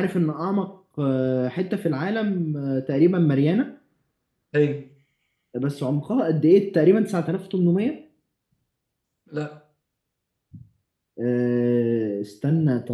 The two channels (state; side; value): identical; both; correlation 1.00